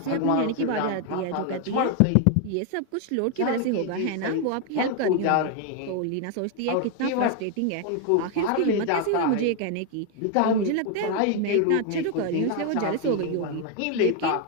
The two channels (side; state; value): both; different; correlation 0.01